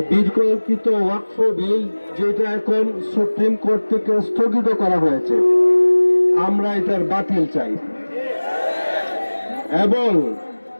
বিতর্কিত ওয়াকফ বিল, যেটা এখন সুপ্রিম কোর্ট থেকে স্থগিত করা হয়েছে, আমরা এটার বাতিল চাই। এবং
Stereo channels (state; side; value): inverted; both; correlation -1.00